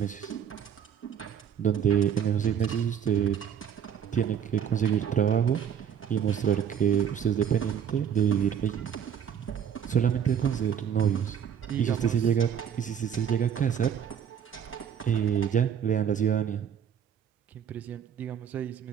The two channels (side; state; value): left; quieter; 8.4 dB